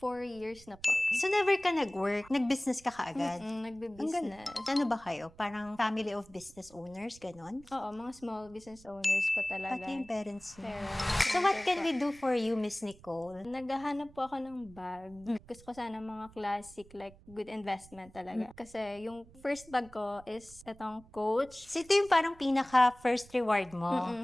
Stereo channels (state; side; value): noise; right; rumble, 23 dB below the sound